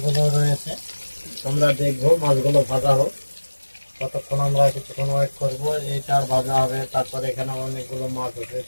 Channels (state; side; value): inverted; both; correlation -1.00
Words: রয়েছে। তোমরা দেখবো মাছগুলো ভাজা হোক, ততক্ষণ আমরা কিছুক্ষণ ওয়েট করবো। এইটার ভাজা হবে, তারপরে এখানে অনেকগুলো মাছ